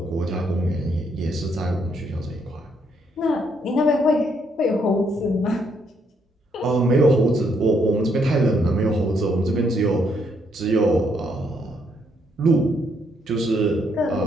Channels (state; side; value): normal; both; correlation 0.73